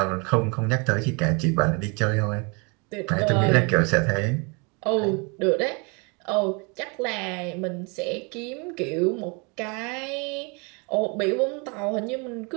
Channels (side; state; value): left; quieter; 31.9 dB